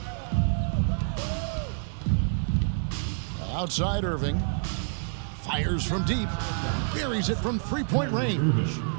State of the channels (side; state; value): left; silent; digital silence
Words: Outside Irving. Fires from deep. Buries it from three-point range.